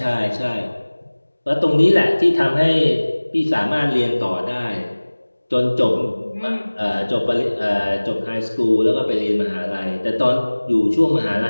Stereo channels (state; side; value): inverted; both; correlation -1.00